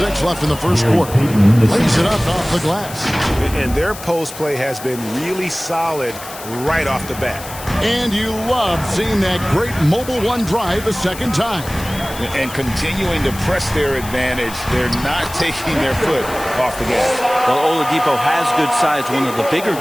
left in the first quarter. Lays it up off the glass. And their post play has been really solid right off the bat. And you love seeing that great mobile 1 drive a second time. And continuing to press their advantage. They're not taking their foot off the gas. Well, Oladipo has good size, one of the bigger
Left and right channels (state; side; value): noise; left; hiss, 14 dB below the sound